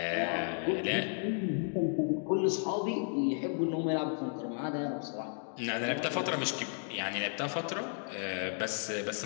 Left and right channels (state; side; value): silent; right; 55 dB below the other